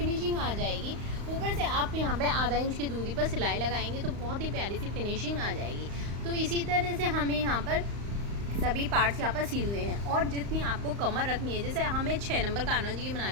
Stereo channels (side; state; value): left; late; 35 ms